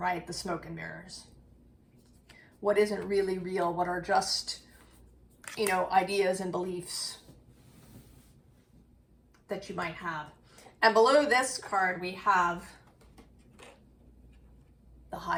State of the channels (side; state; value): both; identical; correlation 1.00